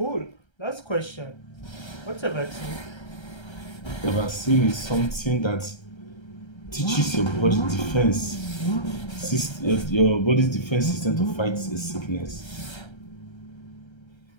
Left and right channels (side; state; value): right; late; 1.3 ms